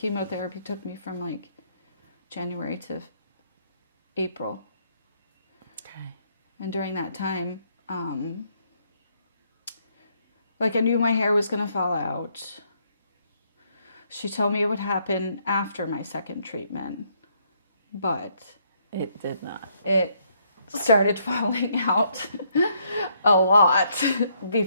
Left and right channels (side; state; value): both; inverted; correlation -0.71